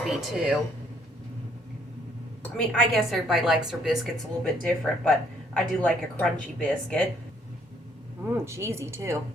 too. I mean, I guess everybody likes their biscuits a little bit different, but I do like a crunchy biscuit. Cheesy too.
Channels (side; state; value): both; normal; correlation 0.67